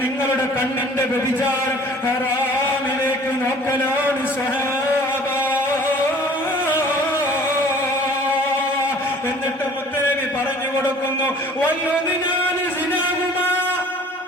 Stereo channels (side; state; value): both; normal; correlation 0.50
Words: നിങ്ങളുടെ കണ്ണിന്റെ വ്യഭിചാരം ഹറാമിലേക്ക് നോക്കലാണ് സഹാബ. എന്നിട്ട് മുത്തുനബി പറഞ്ഞു കൊടുക്കുന്നു, വല്ലുദിനാനി സിനാഹുമാ,